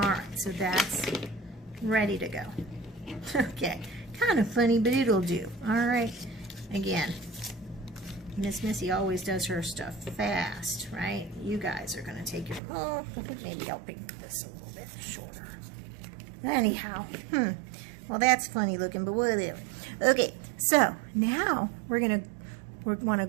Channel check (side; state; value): left; drops out; at 12.6 s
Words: so that's ready to go. Okay, kind of funny, but it'll do. All right, again, Miss Missy always does her stuff fast, right? You guys are going to take your, oh, maybe I'll paint this a little bit shorter. Anyhow, well, that's funny looking, but whatever. Okay, so now we want to